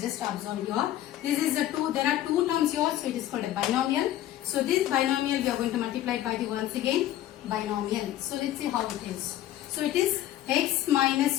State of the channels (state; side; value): quieter; right; 13.0 dB